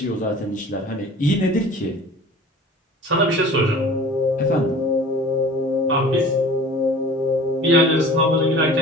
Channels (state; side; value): normal; both; correlation 0.43